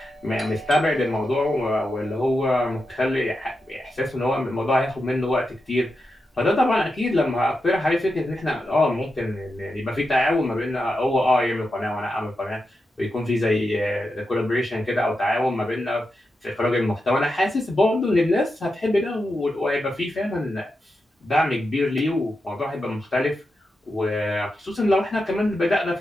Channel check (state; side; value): normal; both; correlation 0.88